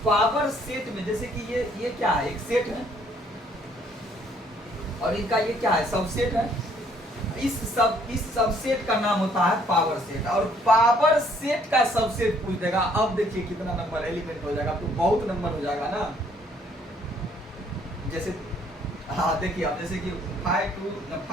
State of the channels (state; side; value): normal; both; correlation 0.64